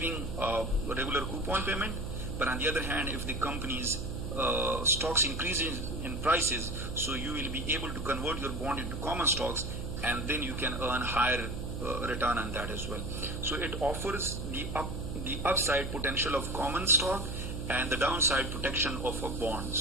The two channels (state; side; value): noise; right; hum, 5 dB below the sound